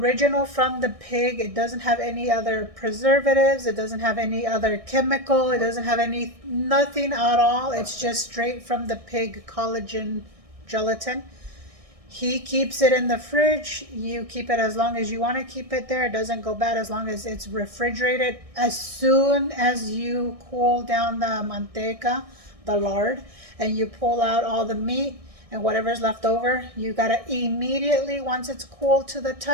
from the pig, it doesn't have any other preservatives, it doesn't have any other chemical, it doesn't have nothing at all. It's just straight from the pig collagen gelatin. He keeps it in the fridge. You keep it as long as you want to keep it there. It doesn't go bad as long as it's refrigerated. As soon as you cool down the manteca, the lard, and you pull out all the meat and whatever's left over, you gotta immediately, once it's cool to the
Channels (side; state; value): left; late; 1.6 ms